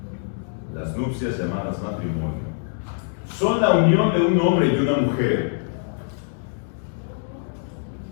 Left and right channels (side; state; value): right; silent; digital silence